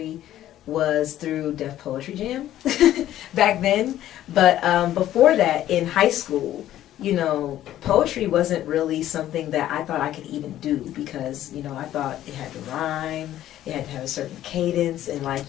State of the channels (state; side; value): quieter; right; 12.8 dB